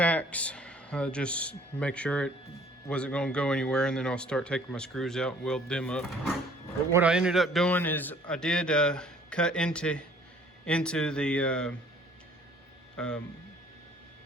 just make sure it wasn't going to go anywhere, and then I'll start taking my screws out and weld them up. But what I ended up doing is I did cut into the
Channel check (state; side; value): normal; both; correlation 0.56